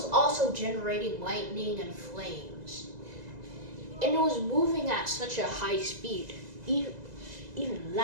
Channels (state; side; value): late; left; 2.0 ms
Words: also generating lightning and flames. And it was moving at such a high speed, even